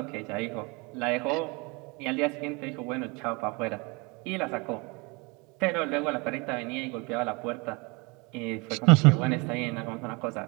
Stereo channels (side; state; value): left; quieter; 28.2 dB